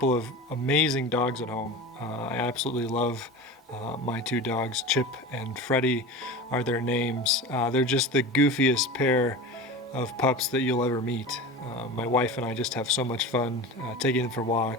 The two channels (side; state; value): both; normal; correlation 0.31